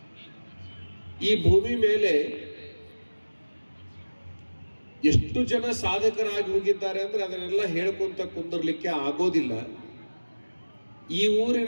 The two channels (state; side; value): inverted; both; correlation -1.00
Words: ಈ ಭೂಮಿ ಮೇಲೆ ಎಷ್ಟು ಜನ ಸಾಧಕರಾಗಿ ಹೋಗಿದ್ದಾರೆ ಅಂದ್ರೆ ಅದನ್ನೆಲ್ಲ ಹೇಳ್ಕೊಂತ ಕುಂದರ್ಲಿಕ್ಕೆ ಆಗೋದಿಲ್ಲ. ಈ